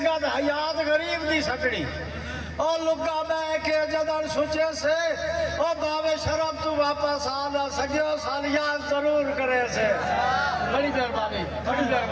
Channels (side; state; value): both; identical; correlation 1.00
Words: حیات غریب دی سکڑی اور لگا میں کہ جدڑ سوچے سے اور باوے شرم تو واپس آنا سگیو سالیان ضرور کرے سے بڑی مہربانی بڑی